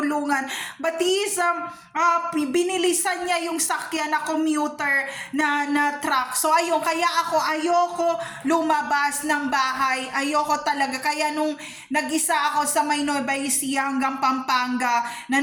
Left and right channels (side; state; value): both; identical; correlation 1.00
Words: But binilisan niya yung sakyan na commuter na truck. So ayun, kaya ayoko lumabas ng bahay. Ayoko talaga. Kaya nung nag-isa ako sa may Nueva Ecija hanggang Pampanga na